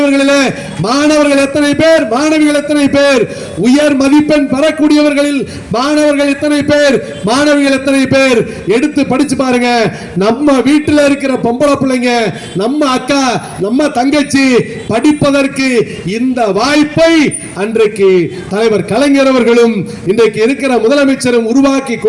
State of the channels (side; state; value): both; identical; correlation 1.00